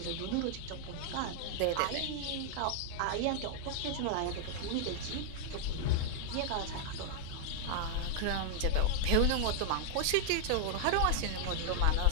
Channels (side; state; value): both; different; correlation 0.00